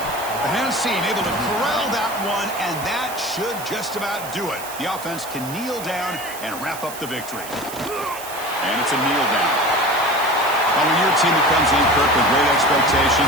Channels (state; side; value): noise; right; hiss, 12 dB below the sound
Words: The hands team able to corral that one, and that should just about do it. The offense can kneel down and wrap up the victory. And it's a kneel down. Well, when you're a team that comes in, Kirk, with great